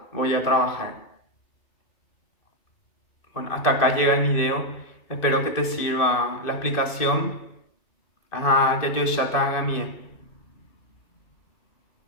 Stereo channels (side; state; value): right; late; 2.5 ms